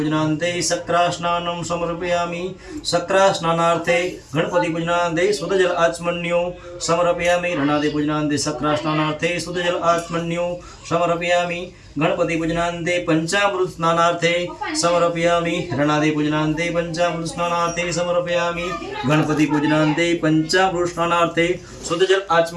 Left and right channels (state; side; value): identical; both; correlation 1.00